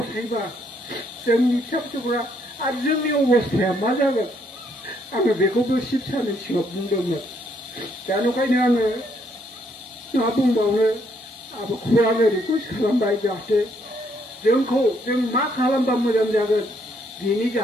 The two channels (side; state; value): both; normal; correlation 0.71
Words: जोंनि फिसा फिसौफोरा आरो जोंनि अबस्थाया मा जागोन आङो बेखौबो शिब सारनि सिगाङाव बुंदोंमोन। दा नंखायनो आङो मा बुंबावनो आब'खौबो आङो रिकुवेस्ट खालामबाय जाहाथे जोंखौ जों मा खालामबा मोजां जागोन बिनि